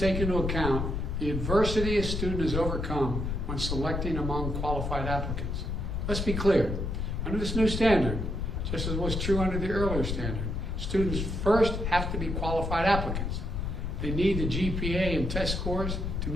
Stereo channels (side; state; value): left; noise; rumble, 2 dB below the sound